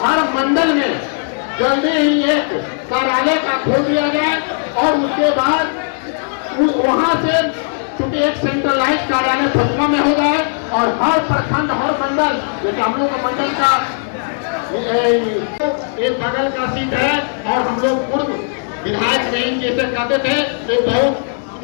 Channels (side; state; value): right; silent; 68 dB below the other